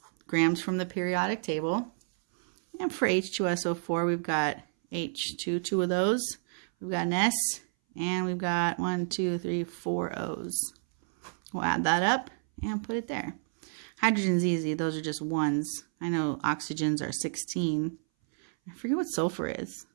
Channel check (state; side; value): silent; left; 58 dB below the other